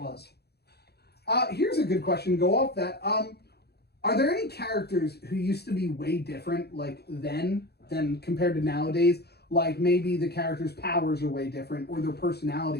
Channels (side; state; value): right; late; 0.47 ms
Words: Here's a good question to go off that. Are there any characters who used to be way different then than compared to nowadays? Like maybe the characters' powers are way different, or their